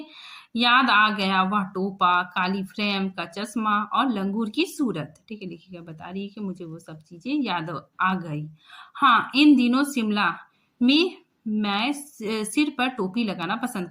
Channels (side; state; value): both; identical; correlation 1.00